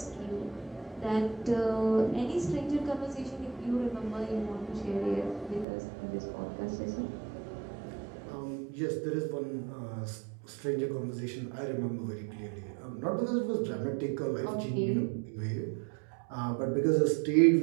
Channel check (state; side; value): drops out; left; at 5.7 s